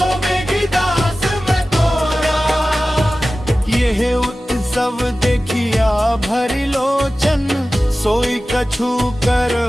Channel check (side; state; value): both; normal; correlation 0.96